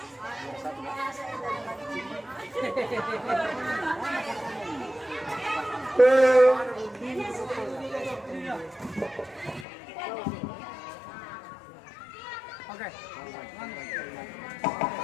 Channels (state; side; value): drops out; right; at 9.7 s